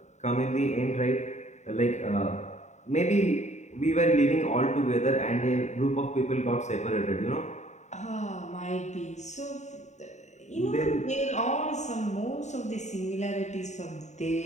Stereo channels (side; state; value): right; late; 0.34 ms